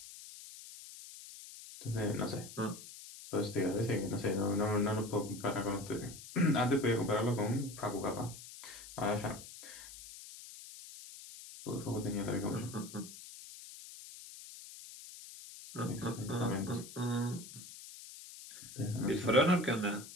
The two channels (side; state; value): left; noise; hiss, 14 dB below the sound